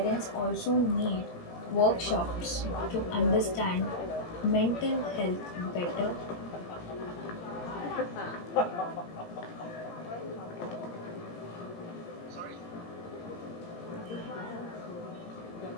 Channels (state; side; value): late; right; 17 ms